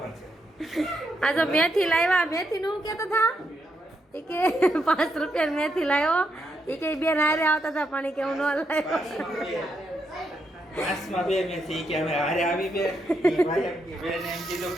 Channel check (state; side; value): normal; both; correlation 0.80